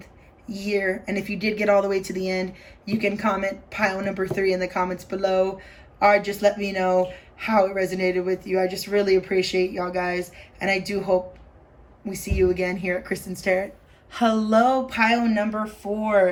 year. And if you did get all the way to the end, you can comment pile number 3 in the comments below. Or just let me know how it resonated with you. I just really appreciate y'all guys. And I do hope we see you again here at Kristen's Tarot. Hello, pile number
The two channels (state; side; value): identical; both; correlation 1.00